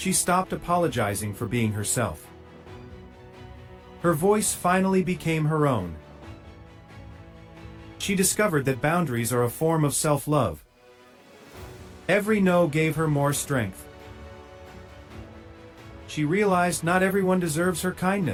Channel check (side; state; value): both; identical; correlation 1.00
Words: stopped apologizing for being herself. Her voice finally became her own. She discovered that boundaries are a form of self-love. Every no gave her more strength. She realized not everyone deserves her